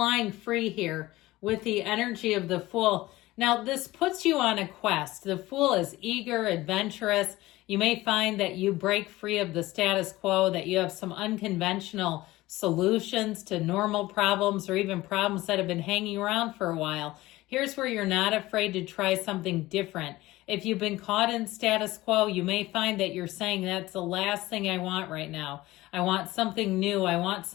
free here with the energy of the Fool. Now, this puts you on a quest. The Fool is eager, adventurous. You may find that you break free of the status quo, that you have some unconventional solutions to normal problems or even problems that have been hanging around for a while. Here's where you're not afraid to try something different. If you've been caught in status quo, you may find that you're saying that's the last thing I want right now. I want something new. I want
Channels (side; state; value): right; quieter; 18.2 dB